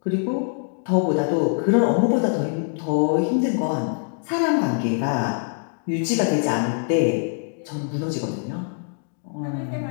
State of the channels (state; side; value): silent; right; 63 dB below the other